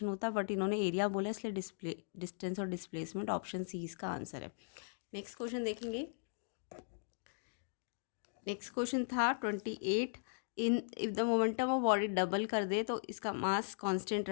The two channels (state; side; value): silent; right; digital silence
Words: होता, बट इन्होंने एरिया बोला इसलिए डिस्टेंस और डिस्प्लेसमेंट, ऑप्शन सी इसका आंसर है। नेक्स्ट क्वेश्चन देखेंगे। नेक्स्ट क्वेश्चन था 28। If the momentum of body double कर दे तो इसका मास कांस्टेंट